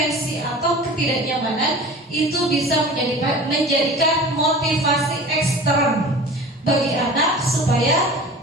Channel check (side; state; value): both; normal; correlation 0.39